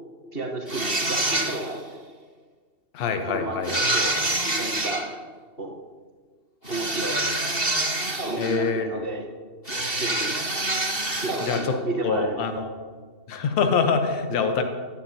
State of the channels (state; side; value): late; right; 2.7 ms